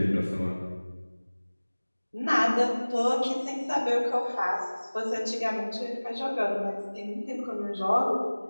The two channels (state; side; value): inverted; both; correlation -1.00